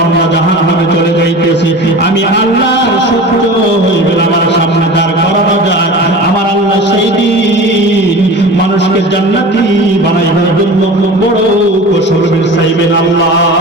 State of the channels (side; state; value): both; normal; correlation 0.35